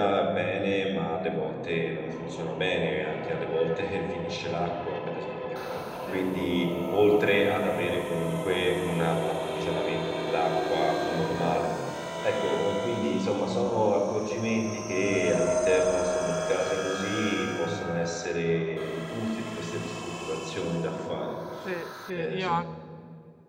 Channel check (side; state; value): both; identical; correlation 1.00